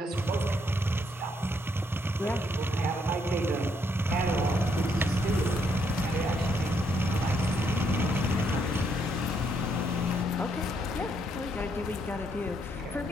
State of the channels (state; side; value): normal; both; correlation 0.73